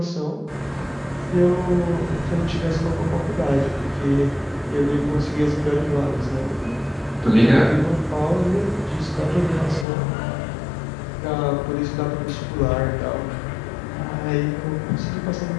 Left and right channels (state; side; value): drops out; right; at 9.9 s